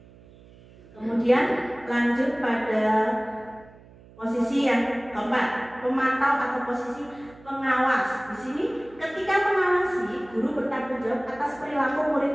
kemudian lanjut pada posisi yang keempat, pemantau atau posisi pengawas. Di sini, ketika mengawasi, guru bertanggung jawab atas perilaku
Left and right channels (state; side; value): noise; right; hum, 23 dB below the sound